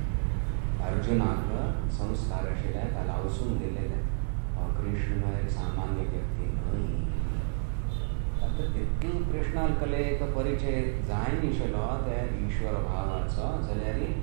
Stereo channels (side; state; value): left; silent; digital silence